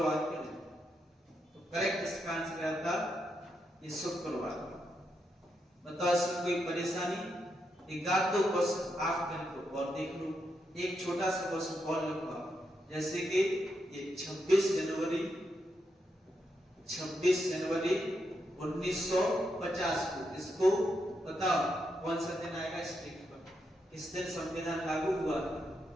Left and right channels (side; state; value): both; normal; correlation 0.82